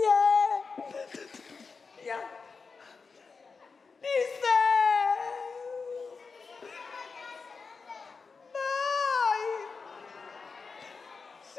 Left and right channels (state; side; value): quieter; right; 4.8 dB